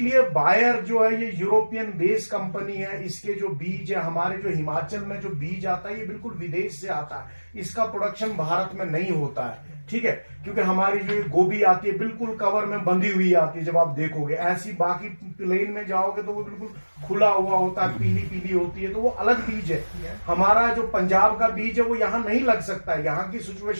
बायर जो है ये यूरोपियन बेस्ड कंपनी है। इसके जो बीज है, हमारे जो हिमाचल में जो बीज आता है, ये बिल्कुल विदेश से आता है। इसका प्रोडक्शन भारत में नहीं होता है, ठीक है। क्योंकि हमारी जो गोभी आती है बिल्कुल कवर में बंधी हुई आती है, जब आप देखोगे ऐसी। बाकी प्लेन में जाओगे तो वो बिल्कुल खुला हुआ होता है, पीली पीली होती है, तो वो अलग बीज है। हमारा जो पंजाब का बीज है वो यहाँ नहीं लग सकता है, यहाँ की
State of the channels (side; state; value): both; inverted; correlation -1.00